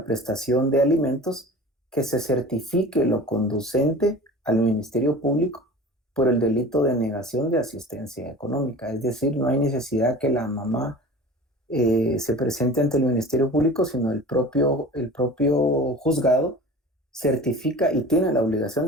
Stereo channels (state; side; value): normal; both; correlation 0.39